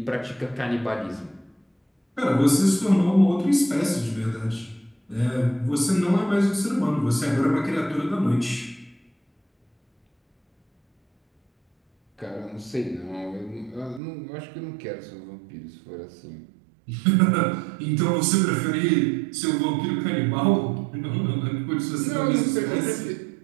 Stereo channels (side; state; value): left; drops out; at 14.0 s